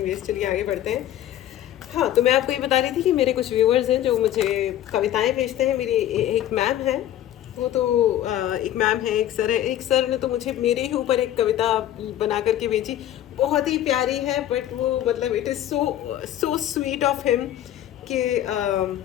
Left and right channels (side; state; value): right; quieter; 12.1 dB